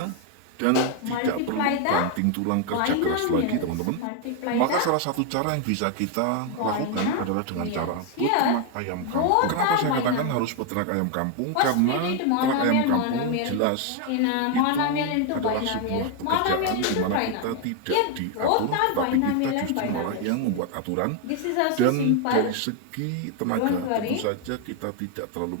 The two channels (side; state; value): both; different; correlation 0.01